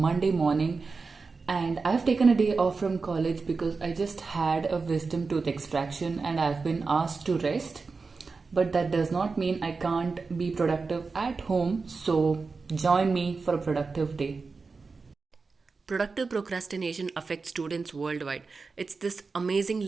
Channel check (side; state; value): left; quieter; 4.4 dB